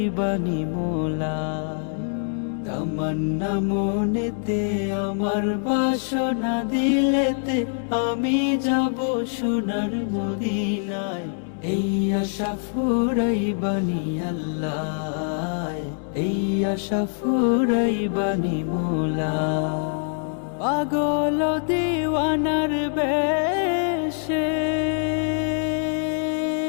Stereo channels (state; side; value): silent; right; 62 dB below the other